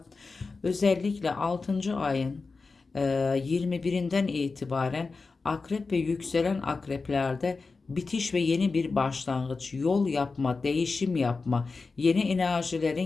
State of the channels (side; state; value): right; quieter; 4.2 dB